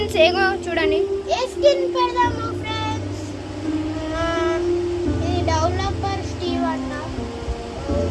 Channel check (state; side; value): identical; both; correlation 1.00